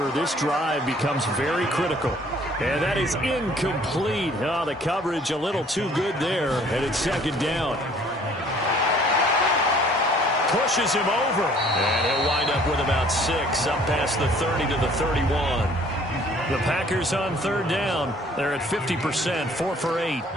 This drive becomes very critical. And that is incomplete. Oh, the coverage a little too good there, and it's second down. Pushes him over. And he'll wind up with about 6, up past the 30 to the 31. The Packers on third down. They're at 50%, 4 for 8.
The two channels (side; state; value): both; normal; correlation 0.56